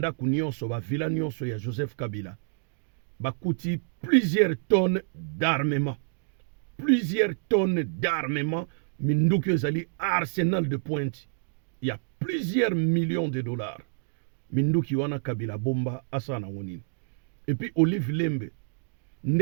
nyonso ba vila nyonso ya Joseph Kabila. Bakuti plusieurs tonnes d'armement. Plusieurs tonnes d'armement minduki ezali arsenal de pointe. Il y a plusieurs millions de dollars. Minduki wana Kabila bomba asana ngonini. Et puis Olive Lembe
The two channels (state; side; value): silent; left; digital silence